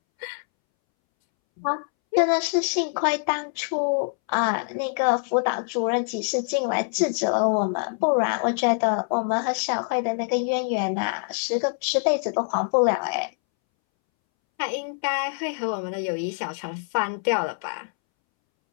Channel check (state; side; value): silent; right; 62 dB below the other